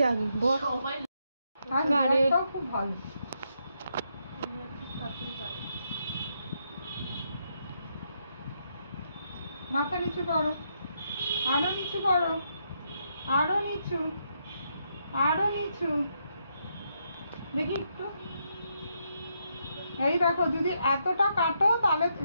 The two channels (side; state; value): both; inverted; correlation -0.78